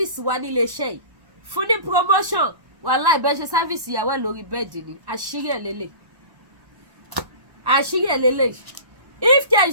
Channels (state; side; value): late; left; 1.1 ms